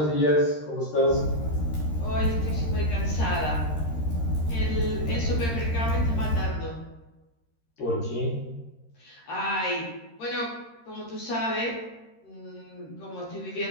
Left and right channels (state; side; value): late; right; 13 ms